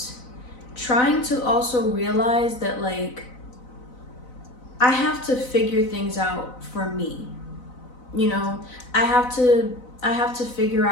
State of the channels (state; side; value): late; right; 4.0 ms